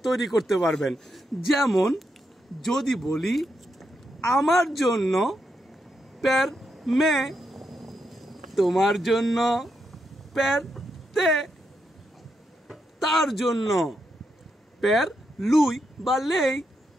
তৈরি করতে পারবেন। যেমন যদি বলি আমার জন্য পের মে, তোমার জন্য পের তে, তার জন্য পের লুই বা লেই,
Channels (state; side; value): normal; both; correlation 0.82